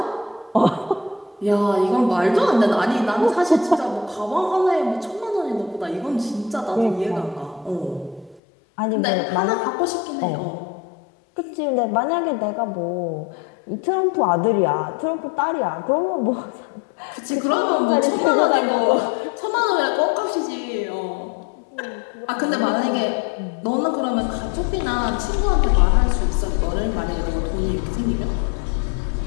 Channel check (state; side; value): drops out; right; at 8.4 s